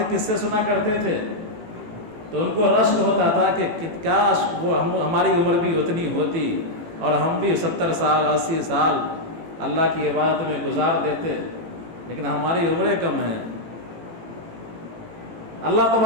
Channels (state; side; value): late; left; 18 ms